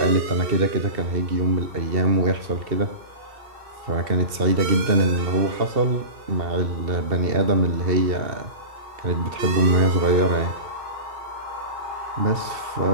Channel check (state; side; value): late; left; 2.7 ms